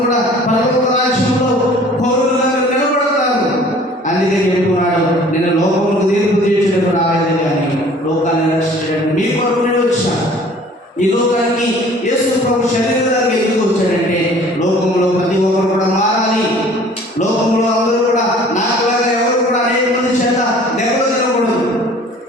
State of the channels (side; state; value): both; normal; correlation 0.51